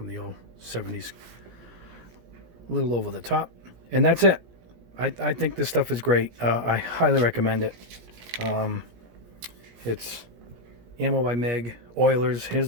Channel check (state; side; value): late; left; 17 ms